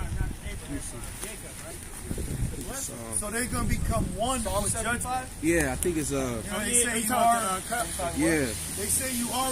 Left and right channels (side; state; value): both; identical; correlation 1.00